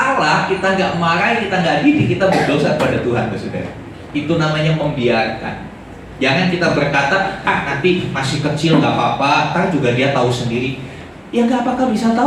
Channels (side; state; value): both; identical; correlation 1.00